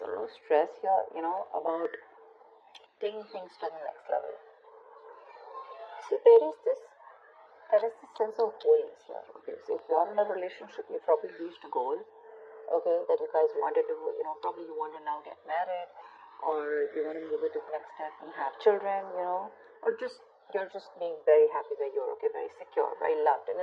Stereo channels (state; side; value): identical; both; correlation 1.00